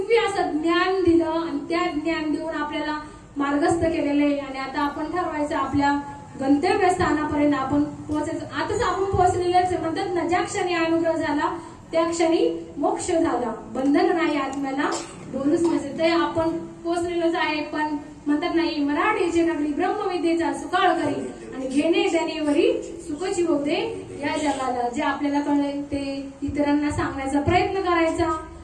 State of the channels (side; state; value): both; identical; correlation 1.00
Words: असं ज्ञान दिलं आणि त्या ज्ञान देऊन आपल्याला मार्गस्थ केलेलं आहे. आणि आता आपण ठरवायचं आपल्या गंतव्यस्थानापर्यंत आपण पोहोचायचं. आताच आपण पोहोचलेलेच आहे. म्हणतात ना, ज्या क्षणी अनुग्रह झाला त्या क्षणी मोक्ष झाला, बंधन नाही आत्म्याला बोलूच नसे. ते आपण पोहोचलेलोच आहे. पण म्हणतात नाही, मराठीची नगरी ब्रह्मविद्येचा सुकाळ करी आणि घेणे देणेवरी सुखची होऊ दे या जगाला. जे आपल्याला कळलंय ते इतरांना सांगण्याचा प्रयत्न करायचा.